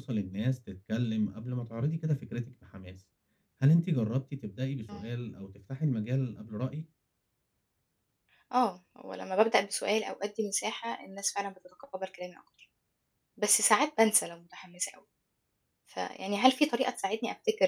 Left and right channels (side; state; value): both; identical; correlation 1.00